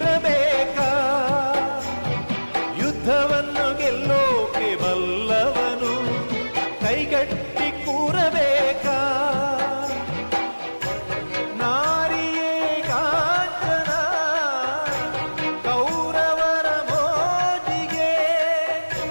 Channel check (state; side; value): inverted; both; correlation -1.00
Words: ಯುದ್ಧವನ್ನು ಗೆಲ್ಲೋಕೆ ಬಲ್ಲವನು ಕೈಗಟ್ಟಿ ಕೂರಬೇಕಾ? ನಾರಿಯೇ ಕಾಂಚನ ಕೌರವರ ಮೋಜಿಗೆ,